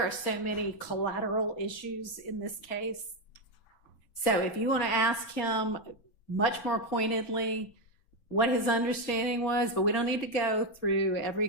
are so many collateral issues in this case. So if you want to ask him much more pointedly what his understanding was, but we don't need to go through every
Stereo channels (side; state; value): right; late; 6.1 ms